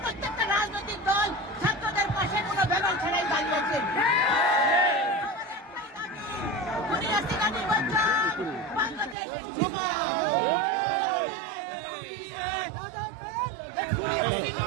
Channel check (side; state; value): left; drops out; at 9.2 s